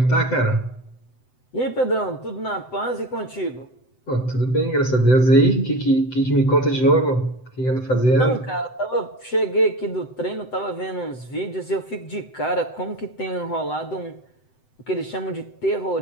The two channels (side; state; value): right; late; 7.8 ms